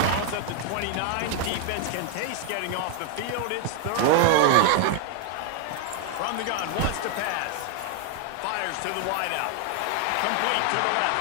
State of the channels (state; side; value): different; both; correlation 0.00